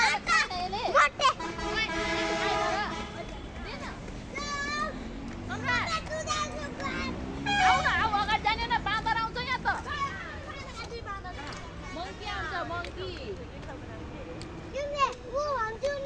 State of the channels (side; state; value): both; identical; correlation 1.00